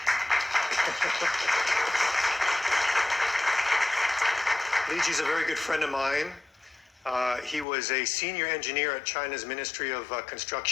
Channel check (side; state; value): right; drops out; at 7.7 s